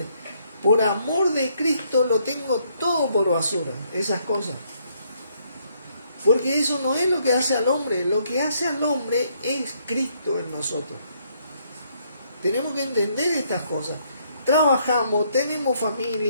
Por amor de Cristo lo tengo todo por basura, esas cosas. Porque eso no es lo que hace al hombre, lo que hace al hombre es Cristo en nosotros. Tenemos que entender estas cosas. Trabajamos, tenemos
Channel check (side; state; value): both; inverted; correlation -0.71